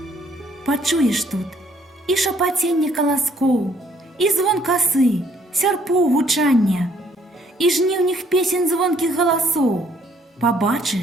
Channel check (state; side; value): normal; both; correlation 0.65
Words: Пачуеш тут і шапаценне каласкоў, і звон касы, сярпоў гучання, і жніўных песень звонкіх галасоў.